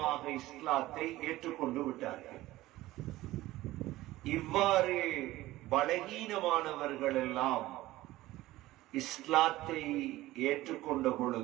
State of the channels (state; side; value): quieter; left; 17.0 dB